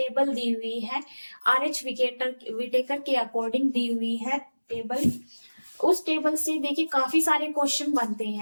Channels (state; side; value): inverted; both; correlation -1.00